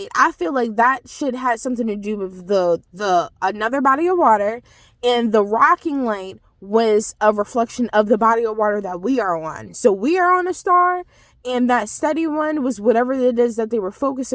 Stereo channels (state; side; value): identical; both; correlation 1.00